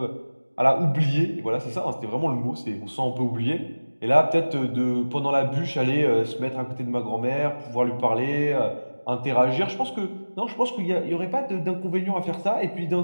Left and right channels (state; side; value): inverted; both; correlation -1.00